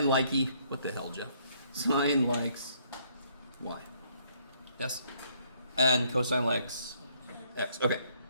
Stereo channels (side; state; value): both; inverted; correlation -0.68